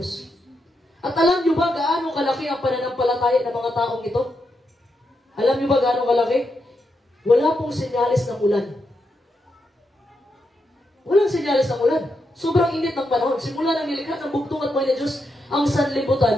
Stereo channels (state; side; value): normal; both; correlation 0.83